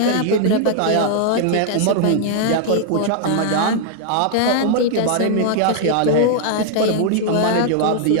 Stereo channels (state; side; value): different; both; correlation -0.01